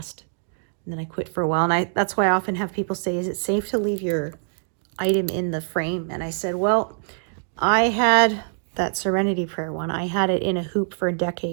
And then I quit for a while. And that's why I often have people say, is it safe to leave your item in the frame? And I said, well, I had that Serenity Prayer one. I had it in a hoop for a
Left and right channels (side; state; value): left; silent; digital silence